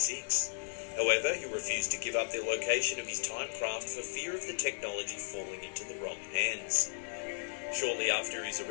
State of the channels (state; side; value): silent; right; digital silence